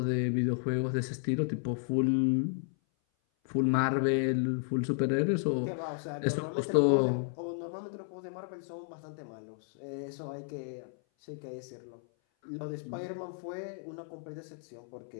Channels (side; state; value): right; silent; 56 dB below the other